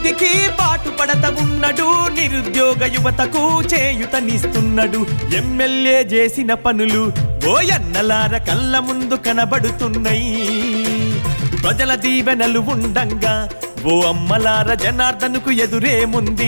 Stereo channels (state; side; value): inverted; both; correlation -1.00